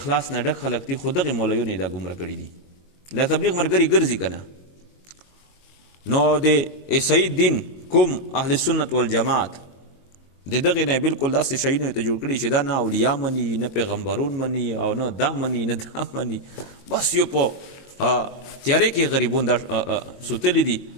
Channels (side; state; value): right; late; 22 ms